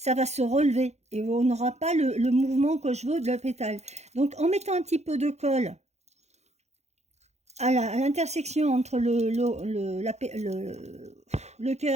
va se relever et on n'aura pas le mouvement que je veux de la pétale. Donc en mettant un petit peu de colle à l'intersection entre le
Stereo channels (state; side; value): late; left; 0.32 ms